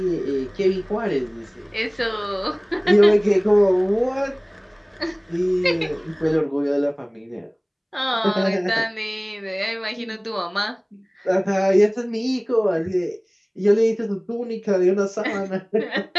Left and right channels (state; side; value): identical; both; correlation 1.00